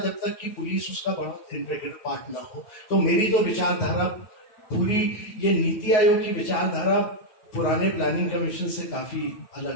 जब तक कि पुलिस उसका बड़ा इंटीग्रल पार्ट ना हो। तो मेरी तो विचारधारा पूरी, ये नीति आयोग की विचारधारा पुराने प्लानिंग कमीशन से काफी अलग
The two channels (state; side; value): late; right; 9.3 ms